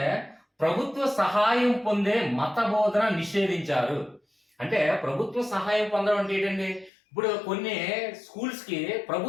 ప్రభుత్వ సహాయం పొందే మత బోధన నిషేధించారు. అంటే ప్రభుత్వ సహాయం పొందడం అంటే ఏంటండి, ఇప్పుడు కొన్ని స్కూల్స్ కి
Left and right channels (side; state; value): right; drops out; at 6.9 s